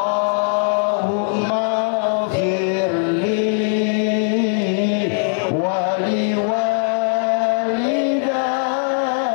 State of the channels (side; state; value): right; silent; 66 dB below the other